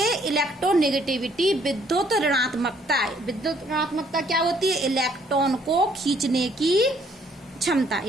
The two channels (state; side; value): normal; both; correlation 0.65